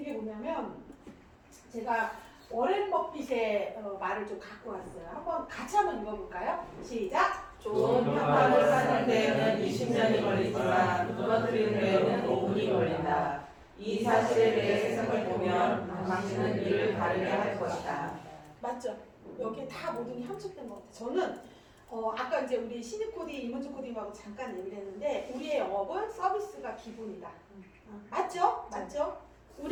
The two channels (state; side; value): identical; both; correlation 1.00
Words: 게 뭐냐면 제가 워렌 버핏의 말을 좀 갖고 왔어요. 같이 한번 읽어볼까요? 시작! 좋은 평판을 쌓는 데에는 20년이 걸리지만 무너뜨리는 데에는 5분이 걸린다. 이 사실에 대해 세상을 보면 당신은 이를 다르게 할 것이다. 맞죠? 여기에 다 모든 게 함축된 것 같아요. 저는 아까 이제 우리 신입 코디, 이문주 코디하고 잠깐 얘기를 했는데 우리의 영업은 서비스가 기본이다. 맞죠? 맞죠?